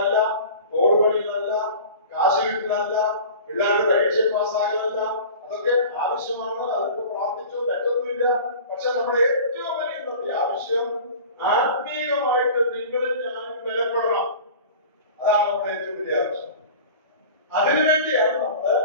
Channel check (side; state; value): both; inverted; correlation -0.39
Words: ഓട് പണികളല്ല, കാശ് കിട്ടലല്ല, പിള്ളേരുടെ പരീക്ഷ പാസ്സാകലല്ല. അതൊക്കെ ആവശ്യമാണ്. അതൊക്കെ പ്രാർത്ഥിച്ചോ, തെറ്റൊന്നുമില്ല. പക്ഷെ നമ്മുടെ ഏറ്റവും വലിയ ഇന്നത്തെ ആവശ്യം ആത്മീയമായിട്ട് നിങ്ങളും ഞാനും ബലപ്പെടണം. അതാണ് നമ്മുടെ ഏറ്റവും വലിയ ആവശ്യം. അതിനുവേണ്ടിയാണ് നമ്മൾ